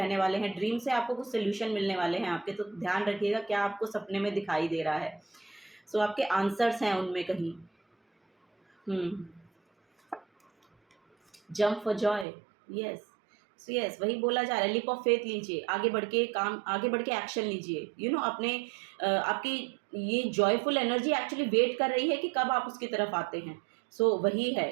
वाले हैं। ड्रीम से आपको कुछ सोल्यूशन मिलने वाले हैं आपके, तो ध्यान रखिएगा क्या आपको सपने में दिखाई दे रहा है। सो आपके आंसर्स हैं उनमें कहीं। Jump for Joy. Yes, yes, वही बोला जा रहा है, लिप ऑफ फेथ लीजिए, आगे बढ़ के एक्शन लीजिए। अपने आपकी ये जॉयफुल एनर्जी एक्चुअली वेट कर रही है कि कब आप उसकी तरफ आते हैं। सो वही है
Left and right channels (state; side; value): drops out; left; at 12.2 s